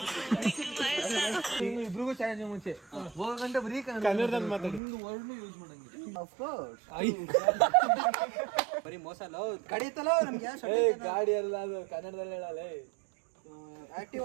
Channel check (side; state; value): left; drops out; at 4.8 s